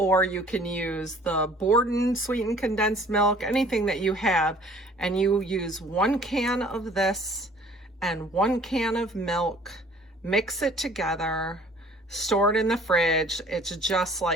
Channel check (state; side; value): normal; both; correlation 0.53